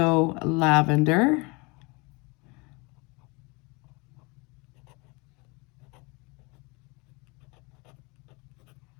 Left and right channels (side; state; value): right; quieter; 27.8 dB